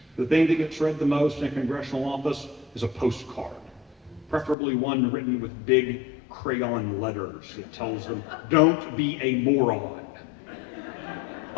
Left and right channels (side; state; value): right; drops out; at 4.5 s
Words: The thing that gets read the most in a congressional office is a postcard, preferably one written with big crayon letters that tells them, don't be a moron.